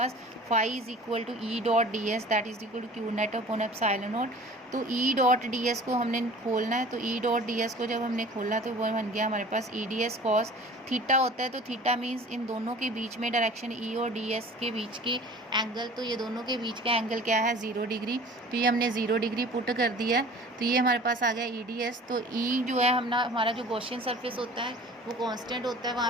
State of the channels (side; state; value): both; normal; correlation 0.44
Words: phi is equal to E dot D S that is equal to Q net upon epsilon naught. तो ई डॉट डी एस को हमने खोलना है। तो ई डॉट डी एस को जब हमने खोला तो वो बन गया हमारे पास E D S cos theta होता है। तो थीटा मीन्स इन दोनों के बीच में डायरेक्शन ई और डी एस के बीच की एंगल, तो ये दोनों के बीच का एंगल क्या है 0 डिग्री। तो ये हमने 0 डिग्री पुट कर दिया है। तो ये हमारे पास आ गया ई डी एस। तो ई जो है हमारा जो गॉसियन सरफेस होता है वो कांस्टेंट होता है, वहाँ